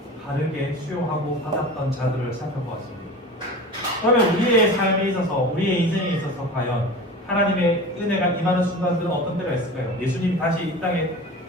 바르게 수용하고 받았던 자들을 살펴보았습니다. 그러면 우리의 삶에 있어서, 우리의 인생에 있어서 과연 하나님의 은혜가 임하는 순간들은 어떤 때가 있을까요? 예수님이 다시 이 땅에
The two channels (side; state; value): both; normal; correlation 0.35